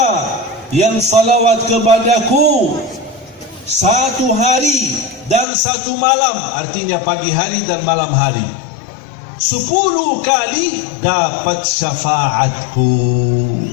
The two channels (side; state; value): right; drops out; at 5.5 s